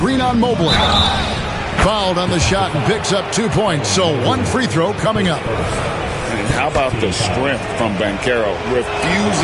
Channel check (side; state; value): both; identical; correlation 1.00